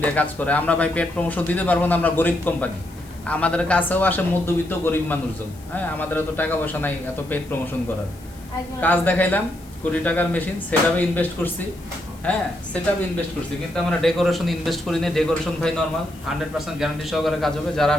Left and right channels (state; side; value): noise; left; hiss, 24 dB below the sound